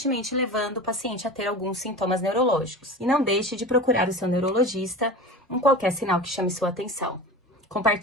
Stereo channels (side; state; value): both; normal; correlation 0.32